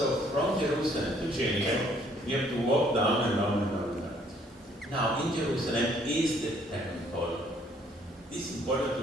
from Jerusalem to Jericho, you have to walk down and down and down and down. Now in Jerusalem is the temple. It's important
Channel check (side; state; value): both; normal; correlation 0.63